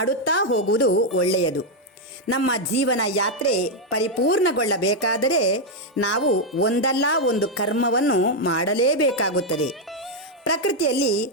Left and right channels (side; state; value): both; normal; correlation 0.01